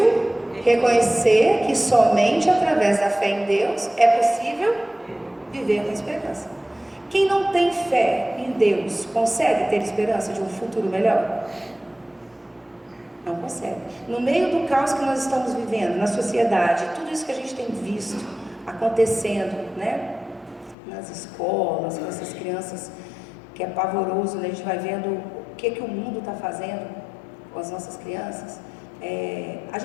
Reconhecer que somente através da fé em Deus é possível viver com esperança. Quem não tem fé em Deus consegue ter esperança de um futuro melhor? Não consegue. No meio do caos que nós estamos vivendo, na sociedade, tudo isso que a gente tem visto acontecendo, né? Nas escolas, com essas crianças, que é pavoroso, né? A gente vai vendo o que o mundo está fazendo com as nossas crianças. A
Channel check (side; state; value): right; drops out; at 20.8 s